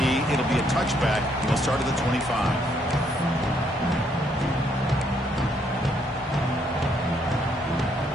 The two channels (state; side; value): normal; both; correlation 0.71